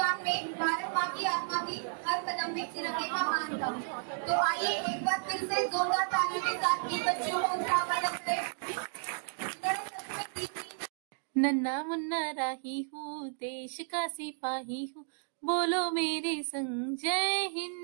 में भारत माँ की आत्मा थी, हर कदम में तिरंगे का मान था। तो आइए एक बार फिर से जोरदार तालियों के साथ इन बच्चों को उत्साहवर्धन करें। नन्ना मुन्ना राही हूँ, देश का सिपाही हूँ, बोलो मेरे संग, जय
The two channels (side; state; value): left; silent; digital silence